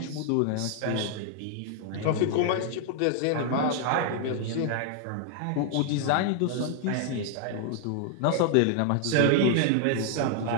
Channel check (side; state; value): both; different; correlation 0.00